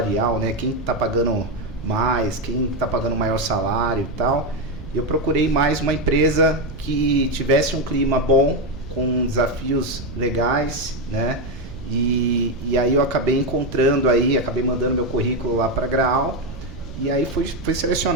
né? Quem está pagando mais, quem está pagando maior salário e tal. Eu procurei mais uma empresa que tivesse um clima bom, com desafios legais, né? E aí eu acabei acabei mandando meu currículo lá para a Grau. E aí fui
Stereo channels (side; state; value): right; noise; rumble, 13 dB below the sound